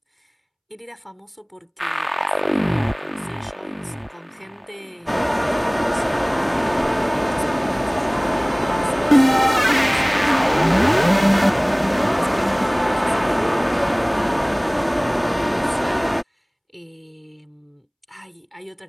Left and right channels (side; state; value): both; identical; correlation 1.00